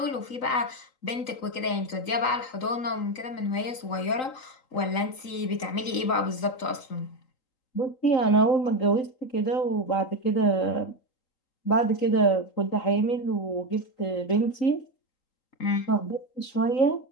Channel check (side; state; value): right; late; 3.9 ms